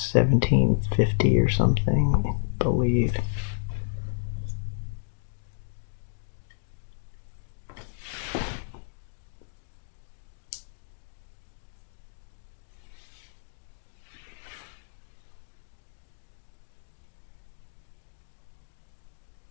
1750 or something, I believe.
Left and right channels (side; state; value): right; silent; 58 dB below the other